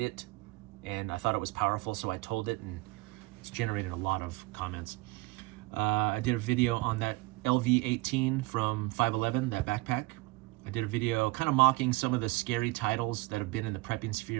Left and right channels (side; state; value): left; quieter; 21.7 dB